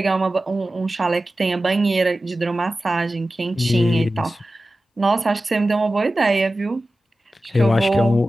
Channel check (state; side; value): normal; both; correlation 0.95